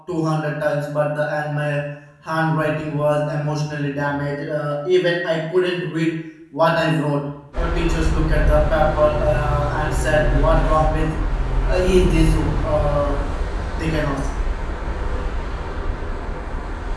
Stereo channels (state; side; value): identical; both; correlation 1.00